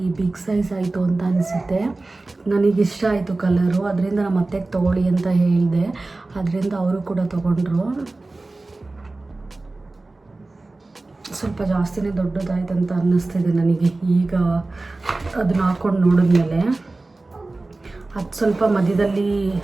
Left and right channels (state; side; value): quieter; left; 3.2 dB